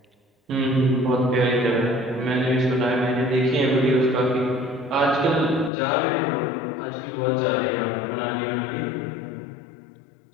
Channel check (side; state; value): right; drops out; at 5.7 s